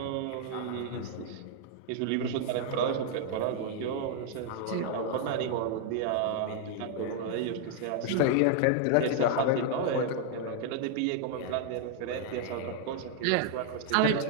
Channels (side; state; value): both; different; correlation 0.00